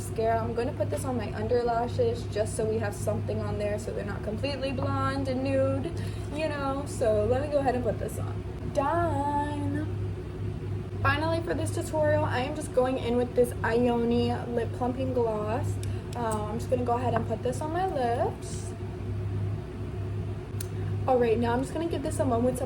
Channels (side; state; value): both; identical; correlation 1.00